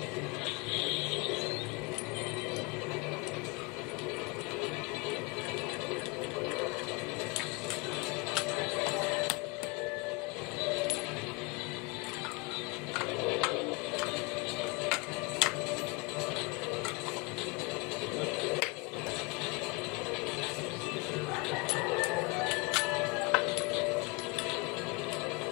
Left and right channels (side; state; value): right; quieter; 28.3 dB